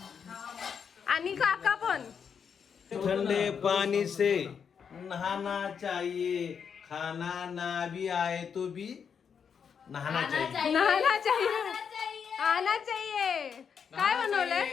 आणि काका पण. ठंडे पानी से नहाना चाहिए, खाना ना भी आए तो भी नहाना चाहिए. नहाना चाहिए, आना चाहिए. काय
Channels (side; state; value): right; quieter; 6.9 dB